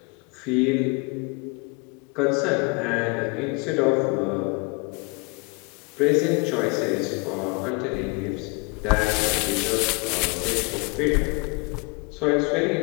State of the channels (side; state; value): right; quieter; 30.4 dB